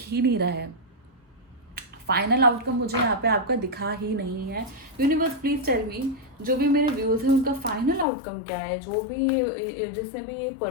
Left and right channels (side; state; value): right; drops out; at 8.1 s